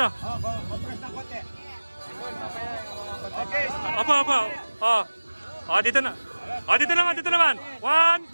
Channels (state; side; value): inverted; both; correlation -1.00